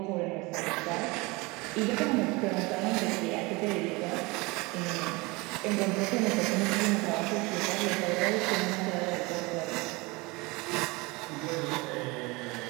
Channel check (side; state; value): left; quieter; 24.8 dB